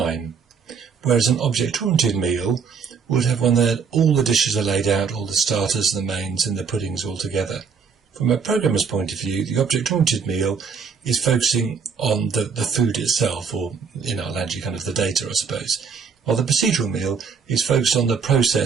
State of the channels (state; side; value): quieter; left; 5.8 dB